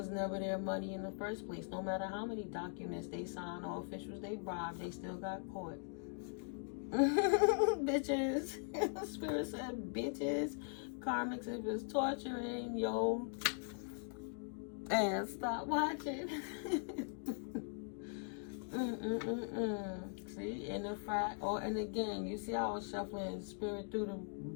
never their money in the first place. No matter how many documents they signed or officials they bribed, they still got caught. Bitches. Spirit said bitches. Karmics, if it's torturing, yo, and stop watching. See, and the fact, and again, you see how I was shuffling Spirit through the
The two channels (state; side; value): silent; right; 51 dB below the other